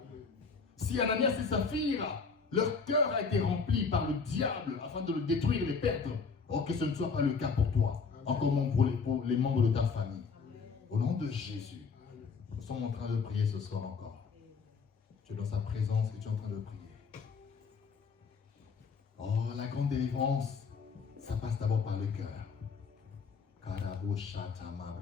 Si Ananias et Saphira, leur cœur a été rempli par le diable afin de le détruire et le perdre, oh, que ce ne soit pas le cas pour toi, encore moins pour les membres de ta famille. Au nom de Jésus, nous sommes en train de prier ce soir encore. Tu es dans sa présence et tu es en train de prier. Oh, la grande délivrance, ça passe d'abord par le cœur. Karabo shata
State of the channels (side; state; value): right; quieter; 5.1 dB